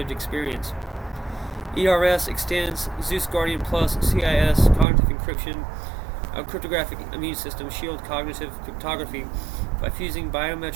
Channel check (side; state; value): left; drops out; at 4.9 s